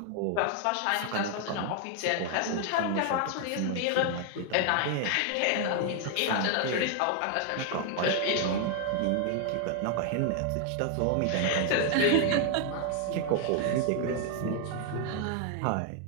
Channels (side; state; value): both; different; correlation 0.00